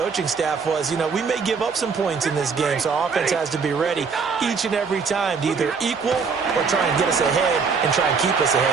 staff was, we may give up some points in this game, so our offense has to be ready each and every time to either equal or try and get us ahead and try and keep us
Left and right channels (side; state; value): left; quieter; 5.4 dB